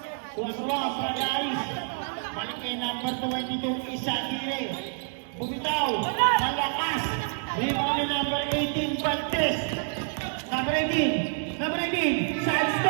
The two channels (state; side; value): silent; left; 60 dB below the other